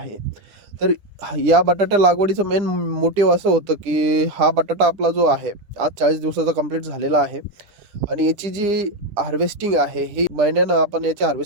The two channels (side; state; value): left; late; 10 ms